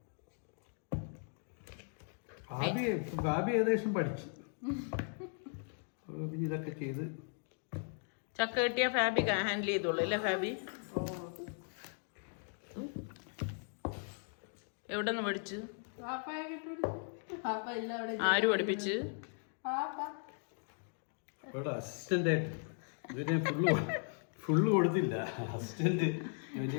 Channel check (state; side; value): silent; right; 53 dB below the other